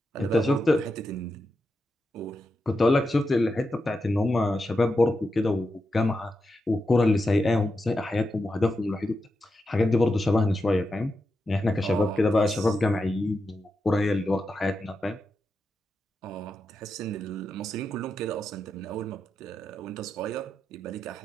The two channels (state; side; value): normal; both; correlation 0.88